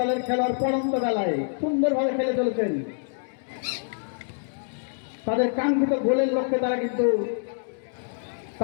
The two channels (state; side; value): silent; right; digital silence